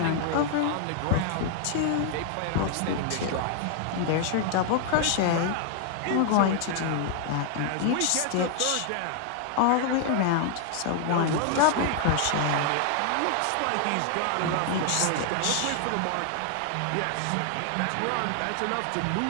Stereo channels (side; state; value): both; different; correlation 0.00